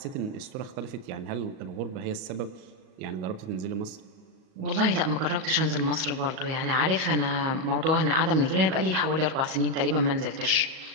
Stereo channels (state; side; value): late; left; 38 ms